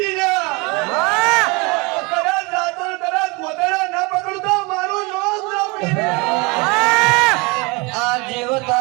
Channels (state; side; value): quieter; left; 27.5 dB